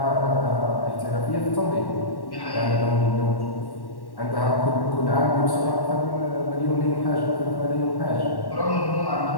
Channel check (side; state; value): right; late; 1.1 ms